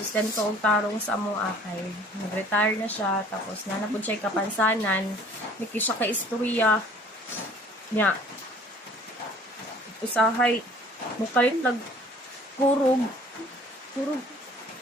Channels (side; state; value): both; normal; correlation 0.52